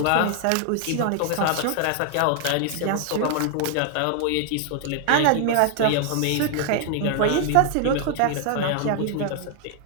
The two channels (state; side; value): different; both; correlation 0.00